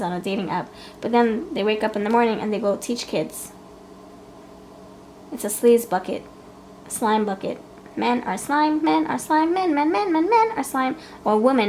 on a dating app. But then they wake up in the morning and they go teach kids. It's a sleaze bucket, slime bucket. Men are slime, men are slime, men are slime. Or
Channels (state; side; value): identical; both; correlation 1.00